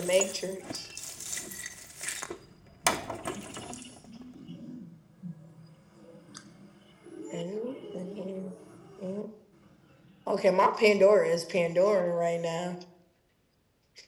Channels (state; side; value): identical; both; correlation 1.00